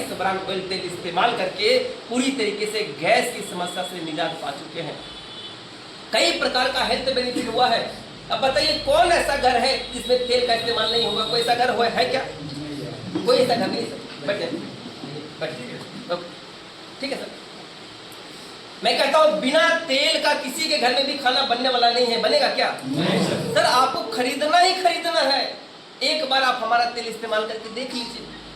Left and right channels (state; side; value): identical; both; correlation 1.00